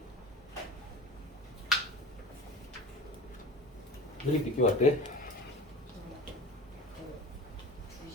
왜 이렇게 늦게 왔대?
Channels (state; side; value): normal; both; correlation 0.36